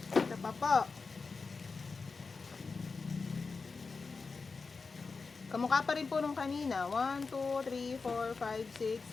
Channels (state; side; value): quieter; right; 4.5 dB